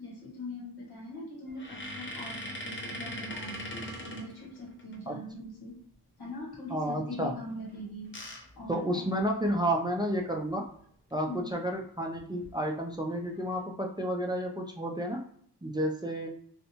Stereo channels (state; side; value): normal; both; correlation 0.44